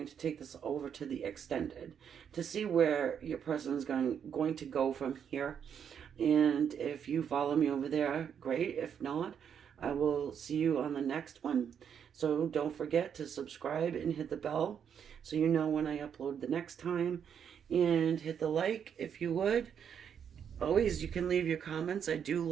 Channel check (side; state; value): left; quieter; 8.0 dB